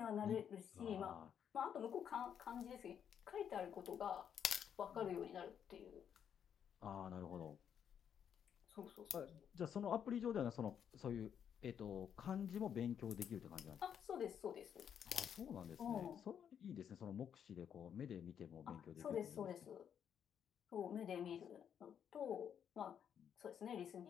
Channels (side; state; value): right; quieter; 8.5 dB